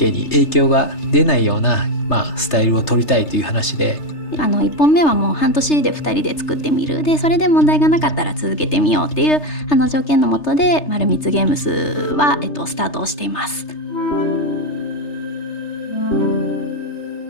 に影響が出ないような、スタイルを取りたいという話で、1本目はもう半年で2人で作ってみる、でそれで問題がなかったら続けてみようっていう条件のもとで丸光ゲームスは、スタートをしています。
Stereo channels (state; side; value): late; right; 3.3 ms